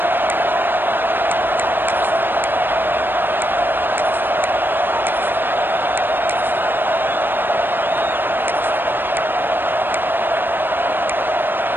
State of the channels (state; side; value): late; left; 0.096 ms